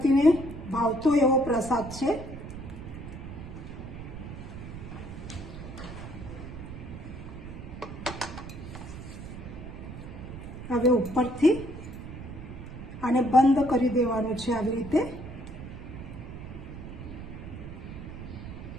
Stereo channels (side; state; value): right; noise; rumble, 10 dB below the sound